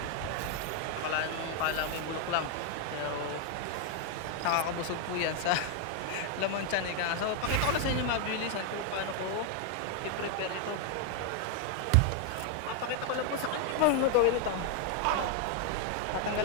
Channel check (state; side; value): different; both; correlation 0.01